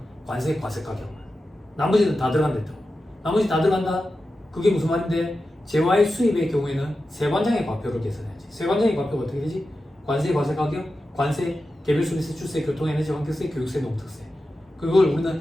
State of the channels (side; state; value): both; normal; correlation 0.92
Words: 관세 과세 가격만. 나머지는 다 들어간다 했다고. 나머지 다 들어간다? 그게 무슨 말인데? 재화의 수입의 경우에는 세관장의 과표를 계산해야지. 세관장의 과표가 어떻게 되지? 관세 과세 가격, 관세, 개별 소비세, 출세, 교통에너지 환경세, 교육세, 농특세. 그걸